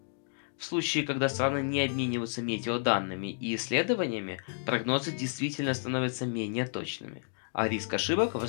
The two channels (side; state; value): right; silent; digital silence